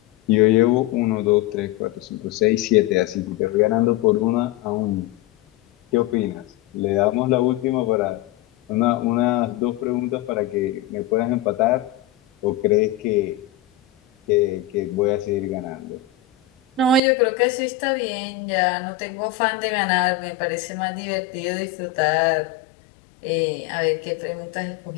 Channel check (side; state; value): right; drops out; at 17.0 s